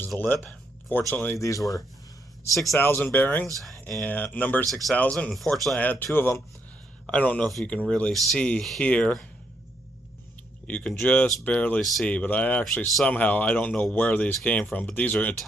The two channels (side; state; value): both; normal; correlation 0.76